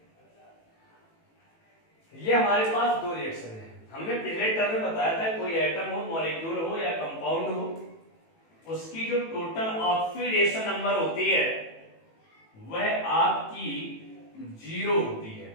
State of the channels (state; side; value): late; right; 18 ms